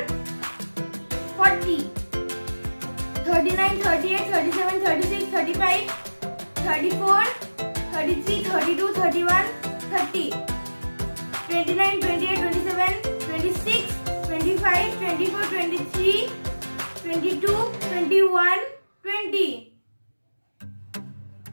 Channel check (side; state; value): both; inverted; correlation -1.00